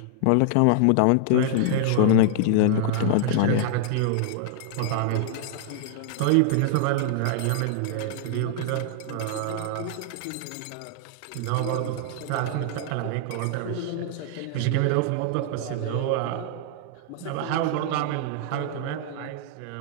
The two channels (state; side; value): different; both; correlation -0.01